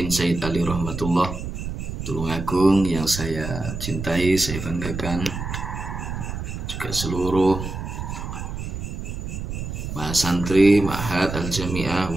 Sayyid Ali Rahmatullah Tulungagung yang saya cintai, saya banggakan, juga seluruh mahasantri Ma'had Al-Jami'ah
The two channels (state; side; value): noise; right; rumble, 6 dB below the sound